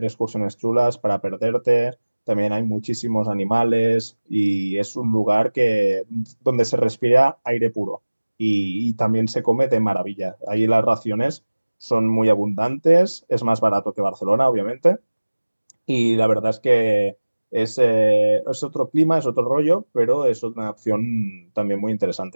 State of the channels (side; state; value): both; inverted; correlation -1.00